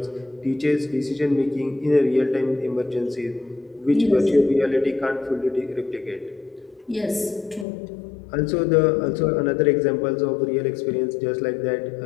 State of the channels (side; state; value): right; drops out; at 7.7 s